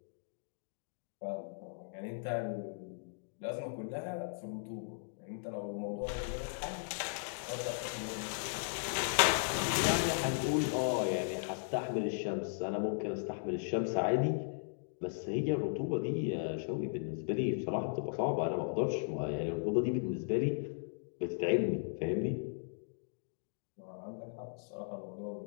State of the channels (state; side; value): silent; right; digital silence